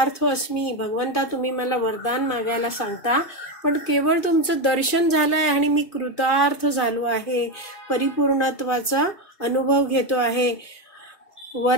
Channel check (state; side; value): late; right; 2.5 ms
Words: अस्मी, भगवंता तुम्ही मला वरदान मागायला सांगता, पण केवळ तुमचं दर्शन झालंय आणि मी कृतार्थ झालो आहे, परिपूर्णत्वाचा अनुभव घेतो आहे.